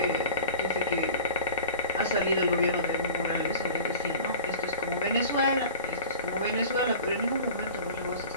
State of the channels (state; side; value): inverted; both; correlation -0.39